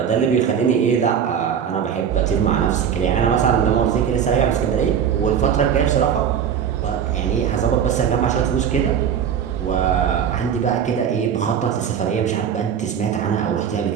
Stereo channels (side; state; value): left; quieter; 8.2 dB